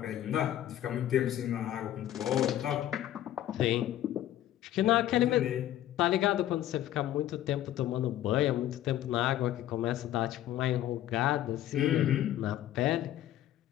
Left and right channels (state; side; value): quieter; right; 12.7 dB